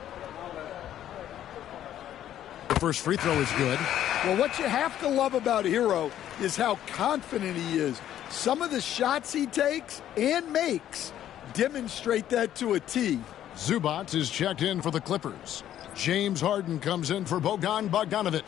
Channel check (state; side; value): quieter; right; 11.5 dB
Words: The first free throw is good. Well, what you have to love about Hero is how confident he is. Some of the shots he takes and makes demonstrate that to a T. Zubac is checked in for the Clippers. James Harden comes in for Bogdan